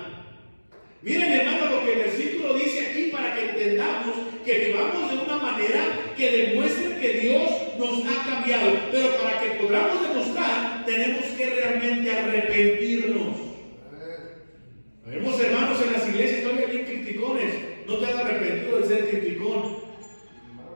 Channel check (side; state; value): both; inverted; correlation -1.00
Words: Miren, hermano, lo que el versículo dice aquí para que entendamos que vivamos de una manera que demuestre que Dios nos ha cambiado. Pero para que podamos demostrar, tenemos que realmente arrepentirnos. Vemos, hermanos, en las iglesias todavía bien criticones. No te has arrepentido de ser criticón.